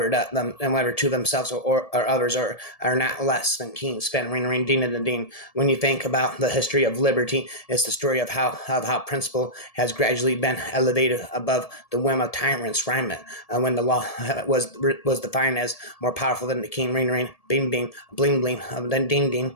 to themselves or others are not less than keen, spend ring ding and dean. When you think about the history of liberty, it's the story of how principle has gradually been elevated above the whim of tyrants. Rhyme it when the law was defined as more powerful than the king. Ring bing bing bling bling then ding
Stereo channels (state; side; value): late; right; 1.7 ms